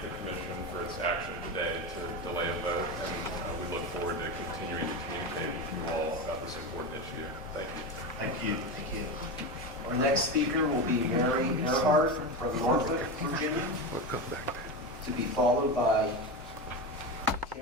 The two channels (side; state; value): both; normal; correlation 0.19